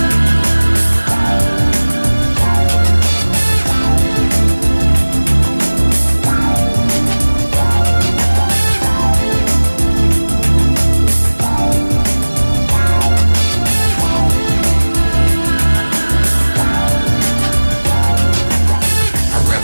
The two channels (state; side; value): inverted; both; correlation -1.00